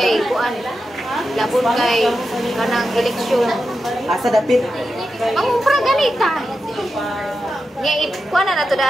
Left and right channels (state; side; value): normal; both; correlation 0.89